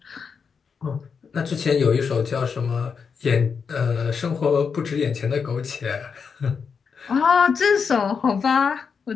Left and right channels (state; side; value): quieter; right; 6.0 dB